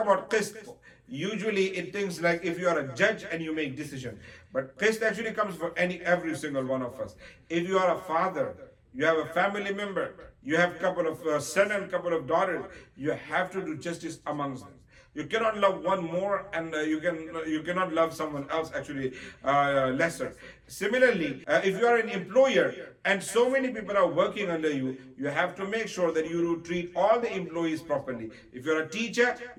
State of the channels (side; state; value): both; identical; correlation 1.00